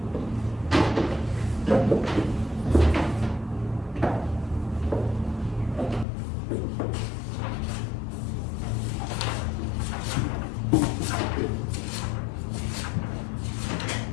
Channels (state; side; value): drops out; right; at 6.1 s